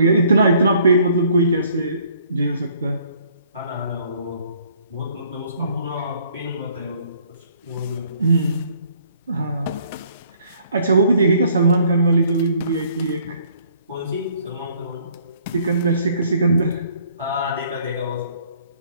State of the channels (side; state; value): both; inverted; correlation -0.61